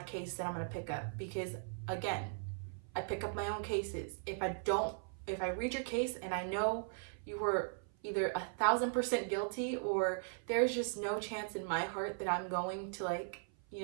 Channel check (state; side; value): silent; left; 52 dB below the other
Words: case that I'm going to pick up, because again, I pick up my own cases. If I read your case and I know you were either 1,000% guilty, or there's just no chance in my heart that I'm going